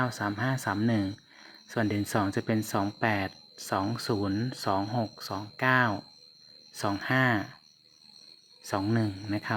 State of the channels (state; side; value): identical; both; correlation 1.00